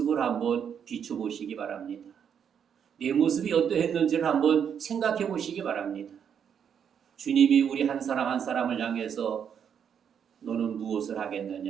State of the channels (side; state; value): left; quieter; 7.9 dB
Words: 한번 비춰보시기 바랍니다. 내 모습이 어떠했는지를 한번 생각해 보시기 바랍니다. 주님이 우리 한 사람 한 사람을 향해서 너는 무엇을